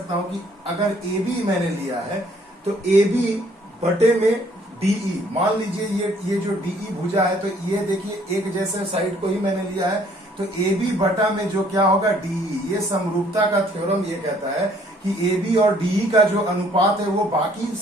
हूं कि अगर AB मैंने लिया है तो AB बटे में DE, मान लीजिए ये जो DE भुजा है, तो ये देखिए एक जैसे साइड को ही मैंने लिया है, तो AB बटा में जो क्या होगा DE। ये समरूपता का थ्योरम ये कहता है कि AB और DE का जो अनुपात है वो बाकी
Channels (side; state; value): both; normal; correlation 0.61